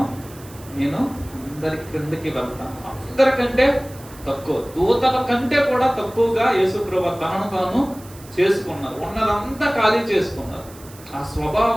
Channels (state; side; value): noise; right; hiss, 21 dB below the sound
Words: నేను అందరి క్రిందకి వెళ్తాను, అందరికంటే తక్కువ, దూతల కంటే కూడా తక్కువగా యేసు ప్రభువు తనను తాను చేసుకున్నారు, ఉన్నదంతా ఖాళీ చేసుకున్నారు. ఆ